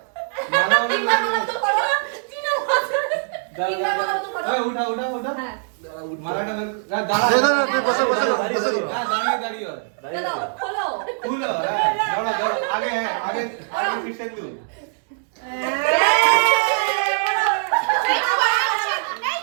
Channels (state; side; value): silent; left; digital silence